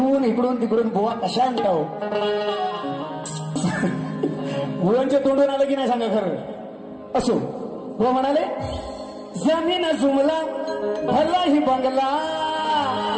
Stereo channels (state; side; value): identical; both; correlation 1.00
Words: इकडून तिकडून बुवा कशा आणता हो. बुवांच्या तोंडून आलं की नाही सांगा खरं. असो बुवा म्हणाले जमीन जुमला भला ही बंगला